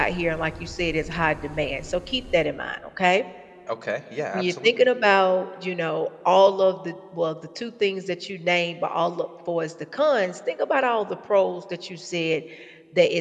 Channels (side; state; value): both; identical; correlation 1.00